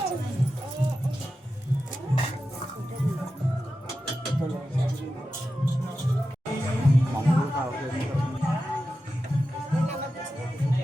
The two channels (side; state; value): both; normal; correlation 0.91